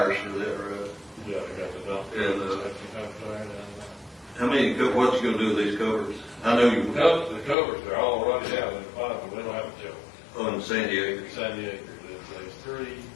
for that road, Yeah, I got the dump. And, That's the dump trailer and, how many, what's you gonna do with these covers? I know you, the covers, they're all running out in the bottom, we don't have a joke. on San Diego. San Diego, there's 3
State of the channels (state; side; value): drops out; right; at 7.6 s